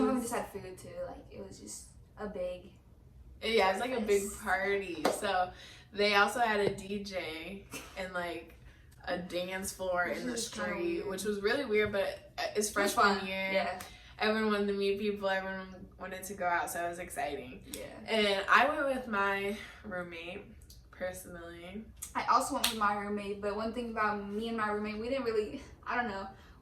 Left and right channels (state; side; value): identical; both; correlation 1.00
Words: of them just had food too. Like it was just a big. Yeah, it's like a big party. So they also had a DJ and like a dance floor in the street, which was really weird, but it's freshman year. Yeah. Everyone wanted to meet people, everyone wanted to go out, so it was exciting. Yeah. And I went with my roommate, personally. I also went with my roommate, but one thing about me and my roommate, we didn't really, I don't know,